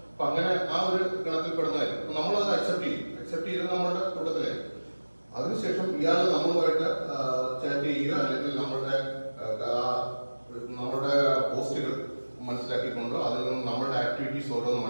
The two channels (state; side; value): inverted; both; correlation -1.00